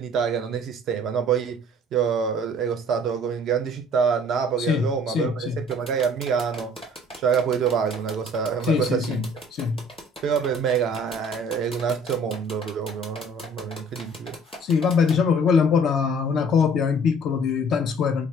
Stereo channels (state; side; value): normal; both; correlation 0.53